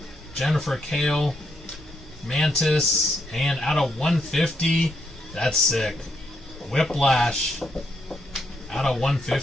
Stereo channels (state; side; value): normal; both; correlation 0.77